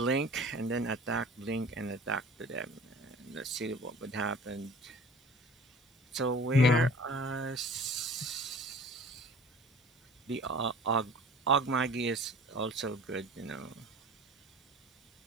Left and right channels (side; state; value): both; normal; correlation 0.44